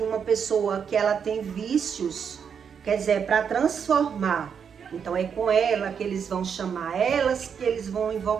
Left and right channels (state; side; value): quieter; left; 7.1 dB